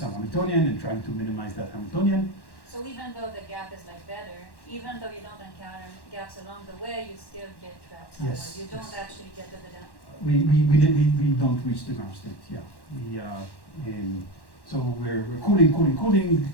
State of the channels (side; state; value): right; late; 1.1 ms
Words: Hamiltonian and trying to minimize that Hamiltonian. So even though the gap is like better, even though you don't encounter gaps along the way, you still get trapped somewhere. Yes, You don't yes. actually get to the down. We don't reach the ground state, yeah. So we're cooling.